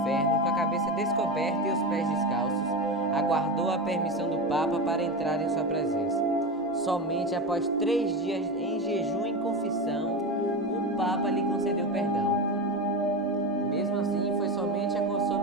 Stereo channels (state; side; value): normal; both; correlation 0.21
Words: com a cabeça descoberta e os pés descalços, aguardou a permissão do Papa para entrar em sua presença. Somente após 3 dias em jejum e confissão, o Papa lhe concedeu perdão. Mesmo assim, foi somente